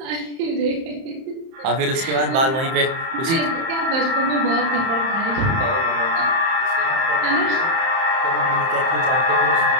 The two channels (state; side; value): late; left; 30 ms